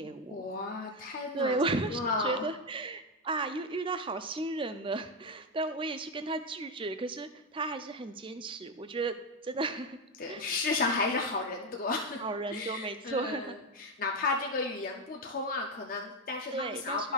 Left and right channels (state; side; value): normal; both; correlation 0.10